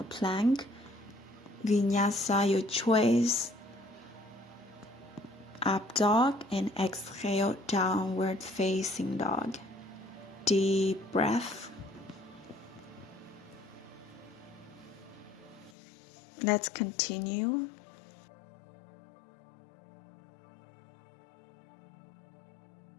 plank. Vinyasa, your choice. Up dog and exhale, downward facing dog. Deep breath. Let's continue.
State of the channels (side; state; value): right; drops out; at 15.8 s